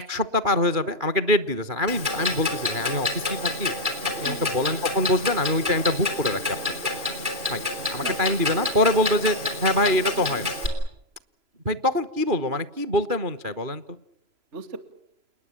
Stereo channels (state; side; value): late; left; 3.0 ms